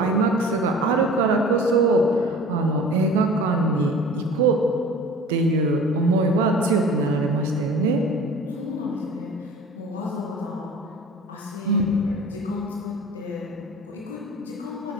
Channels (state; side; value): normal; both; correlation 0.42